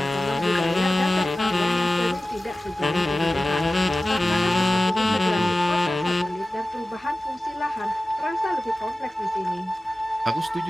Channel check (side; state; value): both; normal; correlation 0.96